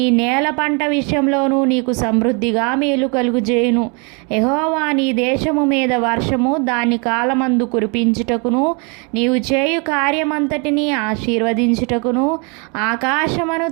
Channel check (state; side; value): quieter; left; 33.9 dB